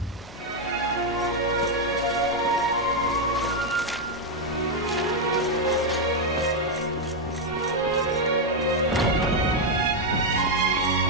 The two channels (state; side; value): normal; both; correlation 0.02